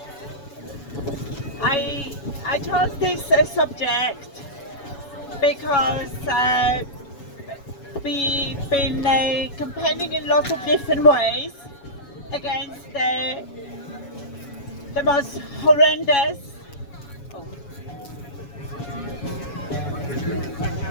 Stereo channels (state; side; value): late; right; 7.1 ms